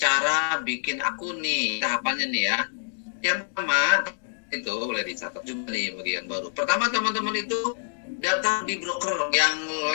bikin akun nih, tahapannya nih ya. Yang pertama itu boleh dicatat juga nih bagi yang baru. Pertama teman-teman itu daftar di broker yang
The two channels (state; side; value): silent; right; digital silence